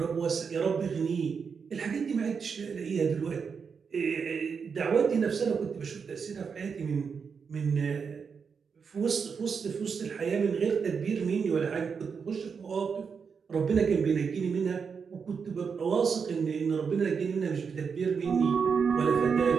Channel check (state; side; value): quieter; left; 6.0 dB